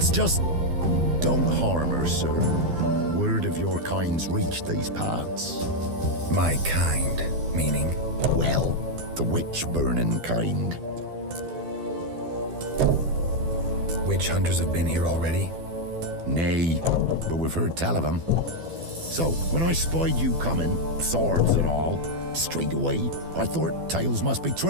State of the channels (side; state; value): left; late; 12 ms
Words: just... don't harm her, sir. Word of your kind's reached these parts. My kind, meaning? Well, the witch-burning kind. Witch hunters have been here already? Nay, but we've heard tell of them. So, when I spied you coming, swords and all, straight away I thought tales must be